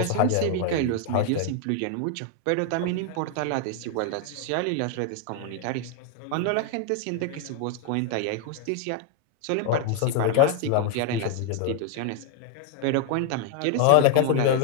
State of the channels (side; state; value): both; different; correlation -0.01